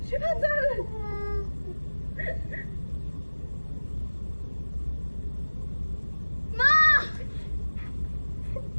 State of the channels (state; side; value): inverted; both; correlation -1.00